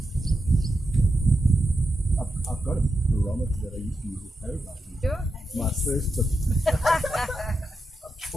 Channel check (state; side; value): normal; both; correlation 0.87